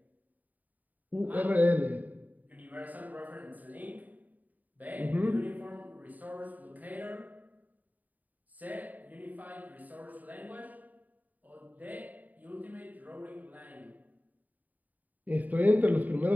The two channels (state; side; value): late; left; 0.080 ms